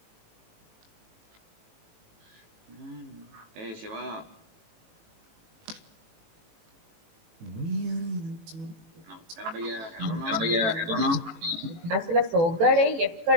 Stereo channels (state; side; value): late; left; 18 ms